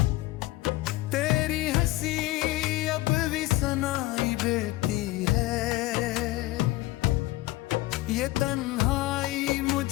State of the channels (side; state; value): right; quieter; 18.2 dB